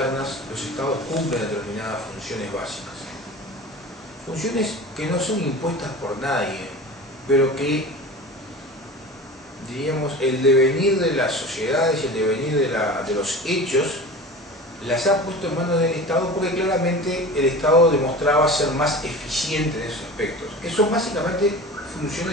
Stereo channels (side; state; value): both; normal; correlation 0.35